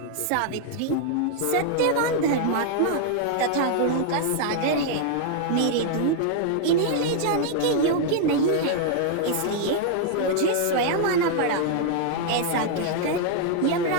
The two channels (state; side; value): different; both; correlation 0.00